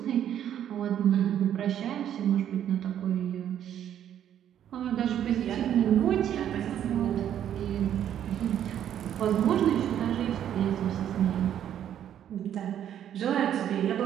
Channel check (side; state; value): left; quieter; 10.2 dB